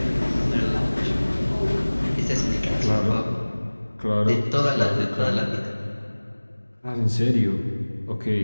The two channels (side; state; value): both; inverted; correlation -1.00